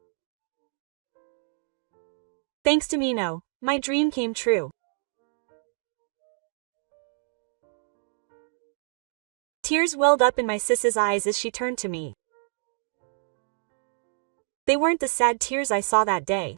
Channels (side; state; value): left; silent; digital silence